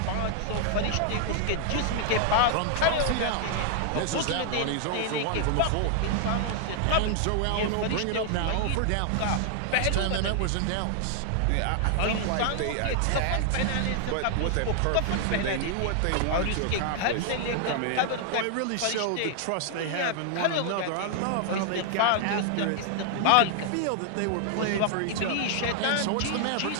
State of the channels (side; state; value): both; different; correlation 0.00